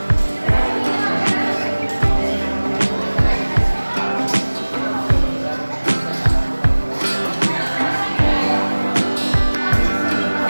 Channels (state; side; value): inverted; both; correlation -1.00